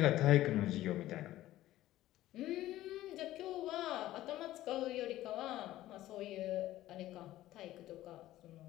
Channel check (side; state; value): right; quieter; 15.0 dB